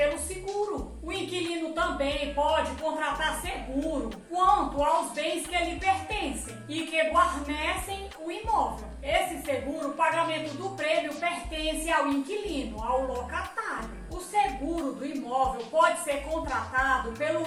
seguro. O inquilino também pode contratar seguro quanto aos bens que lhe pertencem e que guarnecem o imóvel. Esse seguro, o pagamento do prêmio, pertence ao inquilino, ao locatário. O seguro do imóvel pode ser contratado pelo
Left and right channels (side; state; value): both; identical; correlation 1.00